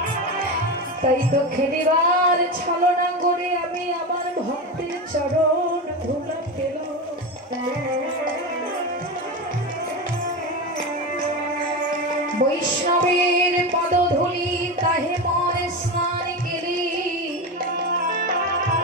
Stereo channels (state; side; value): normal; both; correlation 0.20